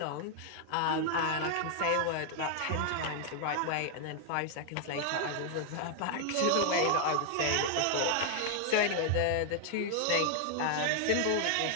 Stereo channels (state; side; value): different; both; correlation 0.00